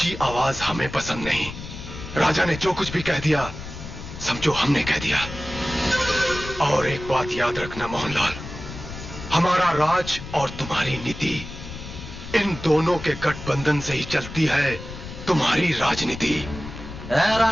आवाज हमें पसंद नहीं। राजा ने जो कुछ भी कह दिया समझो हमने कह दिया। और एक बात याद रखना मोहनलाल, हमारा राज और तुम्हारी नीति, इन दोनों के गठबंधन से ही चलती है तुम्हारी राजनीति।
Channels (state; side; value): noise; left; rumble, 11 dB below the sound